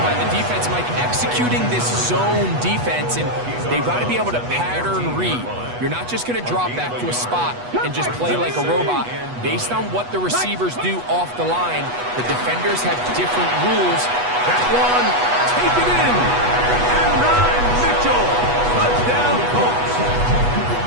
the defense, Mike, executing this zone defense, and they've got to be able to pattern read. You're not just going to drop back to a spot and just play like a robot. Based on what the receivers do off the line, the defenders have different rules. That one, take it in. And 9, Mitchell. Touchdown, Colts.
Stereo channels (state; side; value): late; left; 8.2 ms